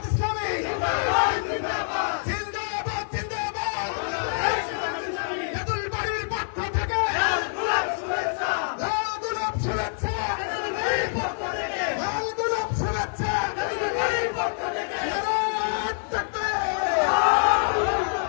ইসলামী জিন্দাবাদ, জিন্দাবাদ, জিন্দাবাদ, তেঁতুল বাড়ির পক্ষ থেকে লাল গোলাপ শুভেচ্ছা, লাল গোলাপ শুভেচ্ছা, তেঁতুল বাড়ির পক্ষ থেকে লাল গোলাপ শুভেচ্ছা, তেঁতুল বাড়ির পক্ষ থেকে নারে তাকবীর।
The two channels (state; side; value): silent; right; digital silence